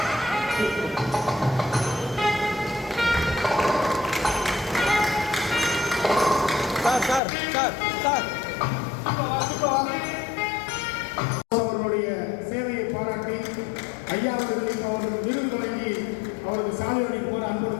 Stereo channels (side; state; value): right; drops out; at 7.2 s